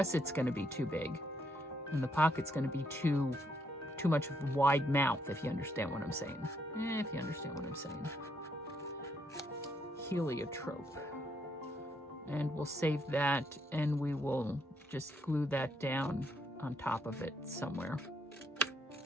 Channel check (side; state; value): both; normal; correlation 0.74